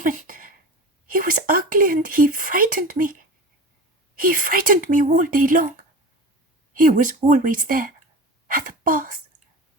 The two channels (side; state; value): both; normal; correlation 0.32